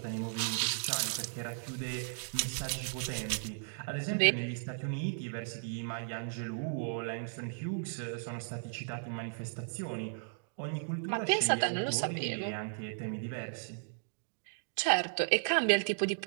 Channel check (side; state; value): left; silent; digital silence